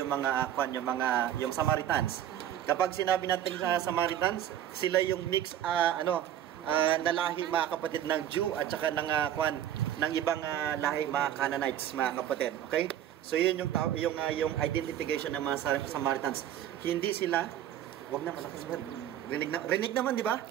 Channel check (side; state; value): left; quieter; 11.1 dB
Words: yung yung Samaritans. Kapag sinabi natin sa Samaritans, sila yung mix na lahi mga kapatid ng Jew at saka ng ibang lahi mga Canaanites mga kapatid. Okay? So yun yung identification ng mga Samaritans. Hindi sila, wag na malakas ba? Rinig naman, di ba?